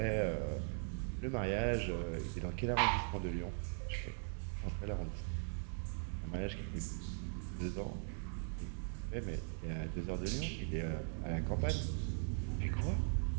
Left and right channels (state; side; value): silent; left; 51 dB below the other